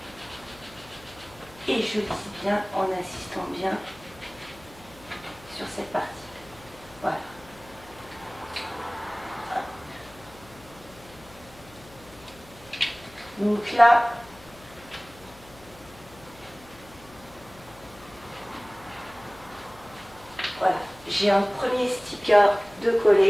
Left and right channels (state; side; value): noise; left; hum, 22 dB below the sound